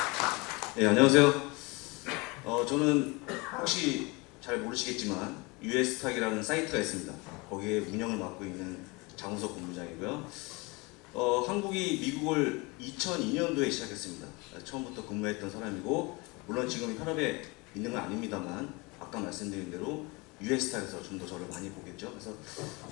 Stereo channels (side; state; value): right; quieter; 26.3 dB